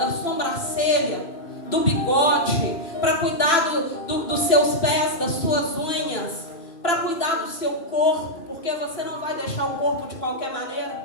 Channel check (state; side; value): late; right; 2.9 ms